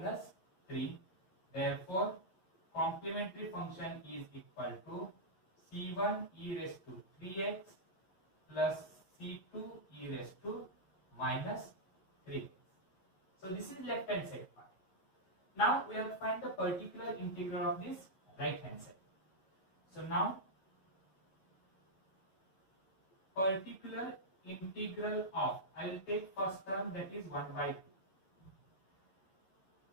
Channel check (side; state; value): right; late; 11 ms